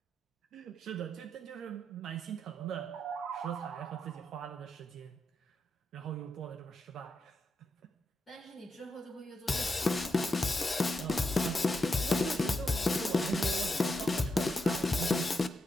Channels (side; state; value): both; normal; correlation 0.84